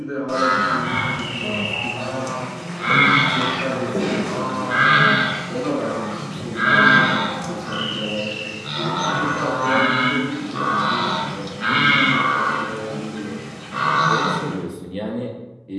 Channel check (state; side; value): identical; both; correlation 1.00